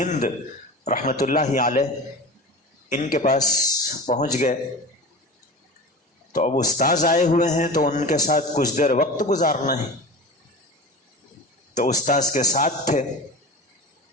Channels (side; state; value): both; normal; correlation 0.32